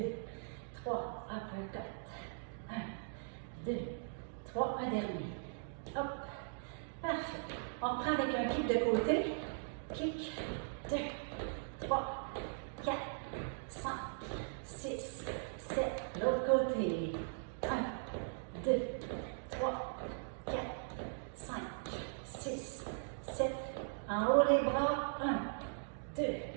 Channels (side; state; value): left; silent; digital silence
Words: 3, uppercut. 1, 2, 3, un dernier. Hop. Parfait. On reprend avec un kick de côté. Kick. 2, 3, 4, 5, 6, 7. L'autre côté. 1, 2, 3, 4, 5, 6, 7. En haut les bras. 1, 2,